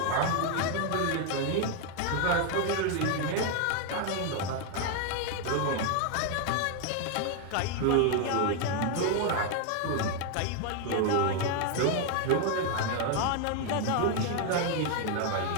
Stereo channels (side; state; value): both; different; correlation 0.01